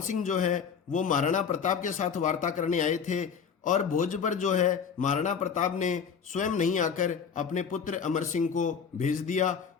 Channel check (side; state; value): right; quieter; 6.6 dB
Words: सिंह जो है वो महाराणा प्रताप के साथ वार्ता करने आए थे और भोज पर जो है महाराणा प्रताप ने स्वयं नहीं आकर अपने पुत्र अमर सिंह को भेज दिया